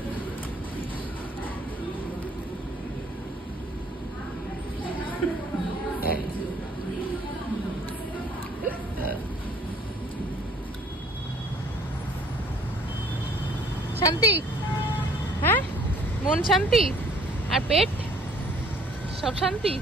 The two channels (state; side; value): normal; both; correlation 0.58